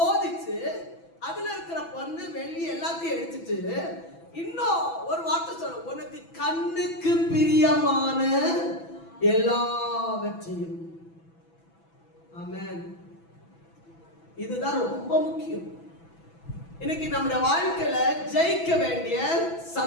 அதுல இருக்கிற பொண்ணு, வெள்ளி எல்லாத்தையும் எடுத்துட்டு இன்னும் ஒரு வார்த்தை சொல்ல, உனக்கு கண்ணுக்கு பிரியமான எல்லாவற்றையும். ஆமென். இதுதான் ரொம்ப முக்கியம். இன்னைக்கு நம்முடைய வாழ்க்கையில ஜெயிக்க வேண்டிய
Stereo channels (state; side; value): late; right; 6.0 ms